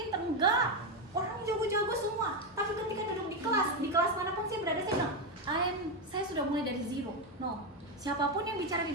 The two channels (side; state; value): both; normal; correlation 0.09